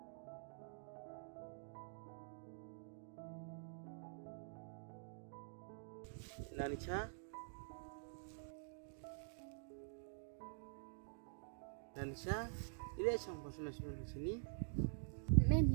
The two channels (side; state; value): left; silent; digital silence